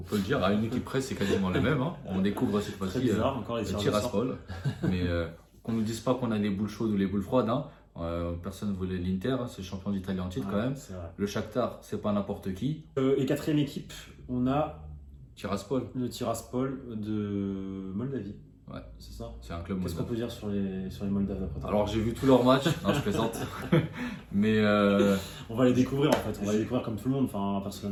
le dire, à une équipe presse, c'est quasiment le même. Hein. On découvre cette Très fois-ci bizarre, encore les le tireurs au sort. Tiraspol. Mais qu'on ne nous dise pas qu'on a les boules chaudes ou les boules froides. Hein. Personne ne voulait l'Inter, hein, c'est le champion d'Italie en titre Ouais, quand même. c'est vrai. Le Shakhtar, c'est pas n'importe qui. Et quatrième équipe, on a Tiraspol, le Tiraspol de Moldavie. ouais, C'est ça. c'est un club Qu'est-ce qu'on moldave. peut dire sur les Moldaves d'après toi? Alors j'ai vu tous leurs matchs, non je plaisante. Mais On va les découvrir en fait, on va les découvrir comme tout le monde. Enfin,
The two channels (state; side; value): identical; both; correlation 1.00